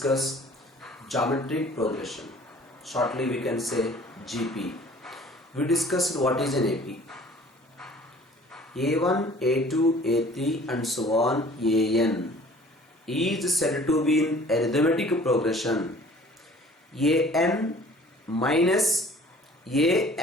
geometric progression. Shortly we can say GP. We discussed what is an AP. A1, A2, A3 and so on AN is said to be in arithmetic progression. AN minus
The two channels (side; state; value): both; normal; correlation 0.51